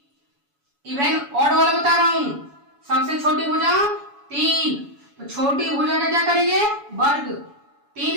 इवन ऑड वाला बता रहा हूं। सबसे छोटी भुजा 3, तो छोटी भुजा का क्या करेंगे? वर्ग।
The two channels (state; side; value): late; left; 7.1 ms